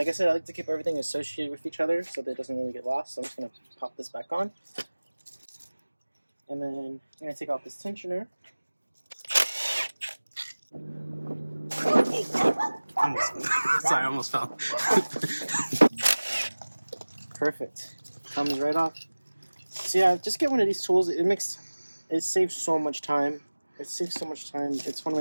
I said, I like to keep everything associated with each other so that it doesn't really get lost. So I'm just going to pop this back on. And then I'm going to take off this tensioner. Sorry, I almost fell. Perfect. Comes right off. So yeah, just get one of these tools. It saves so much time. It saves so much time. It's one of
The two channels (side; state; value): both; inverted; correlation -1.00